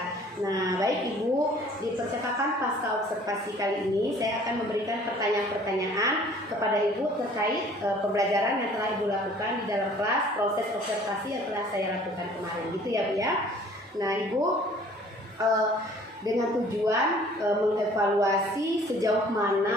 Nah, baik Ibu, di percakapan pasca observasi kali ini saya akan memberikan pertanyaan-pertanyaan kepada Ibu terkait pembelajaran yang telah Ibu lakukan di dalam kelas, proses observasi yang telah saya lakukan kemarin, gitu ya Bu ya. Nah Ibu, dengan tujuan mengevaluasi sejauh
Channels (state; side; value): normal; both; correlation 0.53